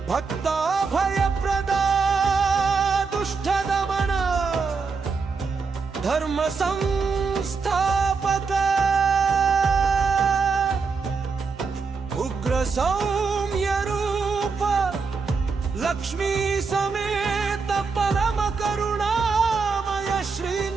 भक्ता भयप्रदा दुष्ट दमन धर्म संस्थापक उग्र सौम्य रूप लक्ष्मी समेत परम करुणामय श्री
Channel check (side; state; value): left; quieter; 4.9 dB